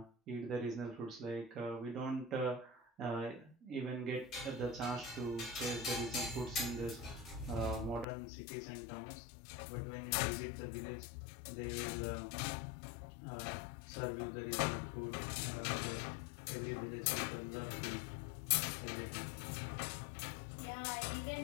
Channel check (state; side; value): drops out; right; at 8.1 s